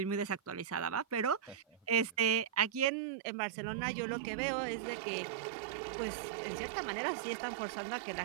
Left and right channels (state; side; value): drops out; left; at 2.9 s